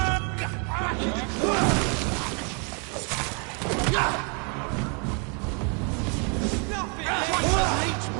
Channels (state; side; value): quieter; left; 36.6 dB